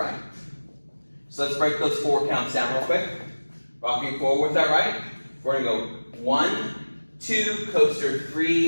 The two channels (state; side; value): inverted; both; correlation -1.00